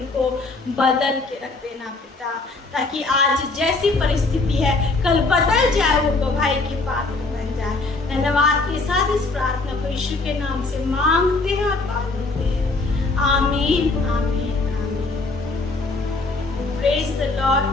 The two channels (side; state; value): right; quieter; 3.5 dB